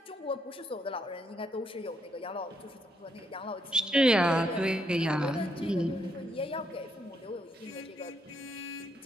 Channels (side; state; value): both; normal; correlation 0.75